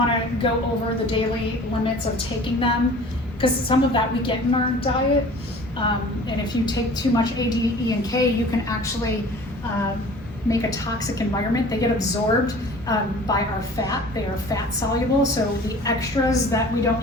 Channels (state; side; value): normal; both; correlation 0.45